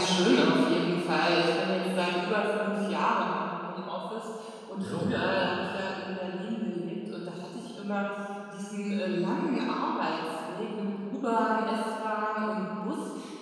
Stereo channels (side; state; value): both; identical; correlation 1.00